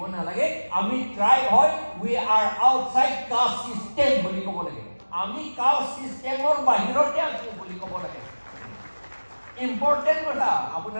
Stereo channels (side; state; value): both; inverted; correlation -1.00